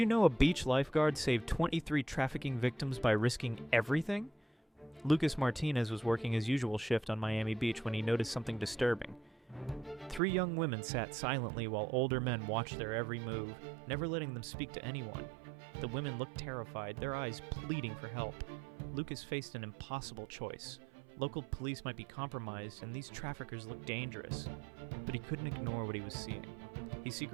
know a beach lifeguard saved 23 trafficking victims by risking everything? Lucas Martinez was working his usual shift on Miami Beach when he noticed something disturbing. 3 young women sat silently while older men watched their every move, never letting them speak to anyone. The women looked terrified, their eyes pleading for help. Lucas faced an impossible choice. Local police might be compromised, and these traffickers looked dangerous. But he couldn't ignore what he was seeing. He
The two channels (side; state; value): left; drops out; at 10.2 s